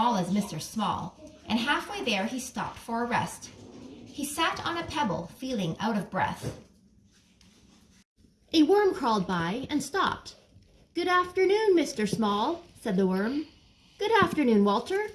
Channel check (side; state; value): both; identical; correlation 1.00